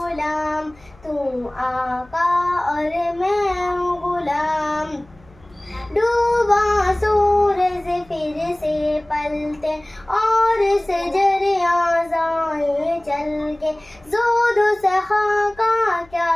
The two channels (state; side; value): noise; left; hum, 28 dB below the sound